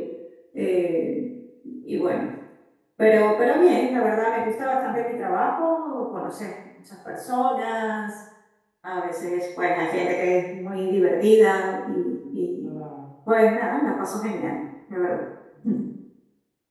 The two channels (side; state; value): both; identical; correlation 1.00